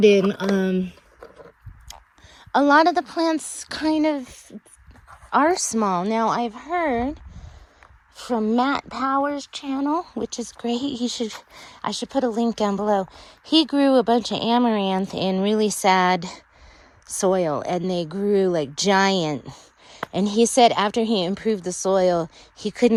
a lot of the plants kind of are small. Now, I've heard from Matt Power's channel, which is great. I should put a link down below. He grew a bunch of amaranth in really sad soil, and they grew like giant. And he said after he improved the soil, he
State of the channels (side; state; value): both; identical; correlation 1.00